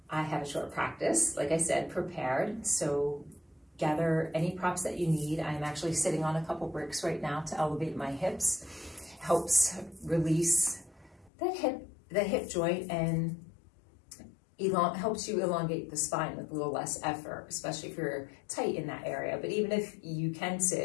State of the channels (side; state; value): right; drops out; at 11.3 s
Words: I have a short practice, like I said, prepared. So gather any props that you need. I'm actually sitting on a couple bricks right now to elevate my hips. Helps release the hip joint and helps you elongate the spine with a little less effort, especially if you're tight in that area. But even if you can